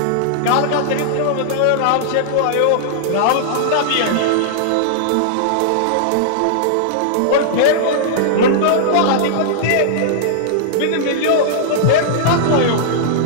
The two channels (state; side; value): different; both; correlation -0.01